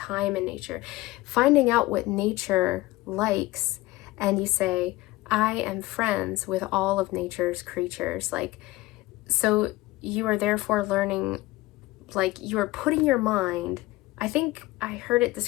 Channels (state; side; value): quieter; right; 19.1 dB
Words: in nature, finding out what nature likes, and you say, I am friends with all of nature's creatures. Like, so you are therefore learning, like, you are putting your mind, I think I heard it